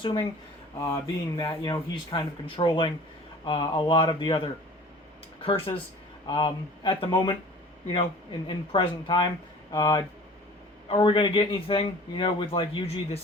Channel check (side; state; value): both; normal; correlation 0.45